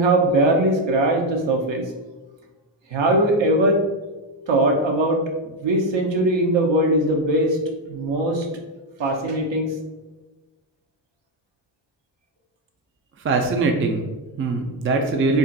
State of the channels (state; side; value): normal; both; correlation 0.05